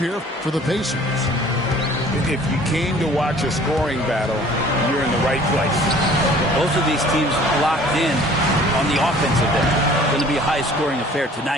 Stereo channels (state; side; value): normal; both; correlation 0.51